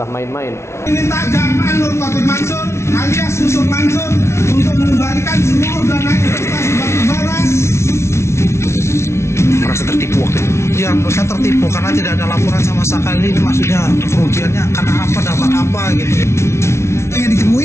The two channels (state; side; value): late; right; 0.13 ms